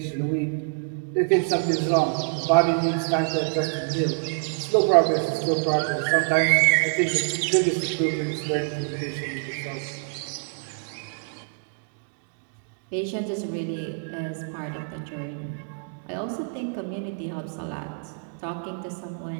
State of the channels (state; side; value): silent; left; digital silence